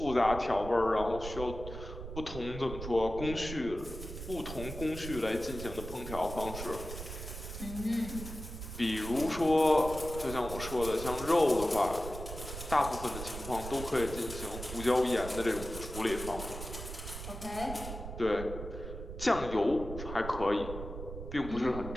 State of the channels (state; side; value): noise; right; rumble, 9 dB below the sound